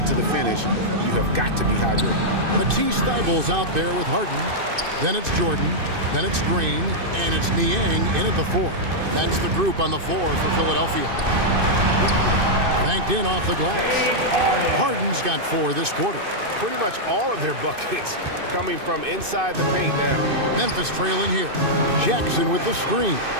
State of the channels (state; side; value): late; left; 2.6 ms